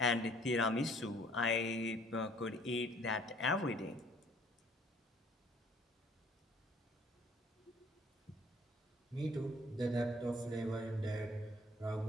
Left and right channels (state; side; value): normal; both; correlation 0.58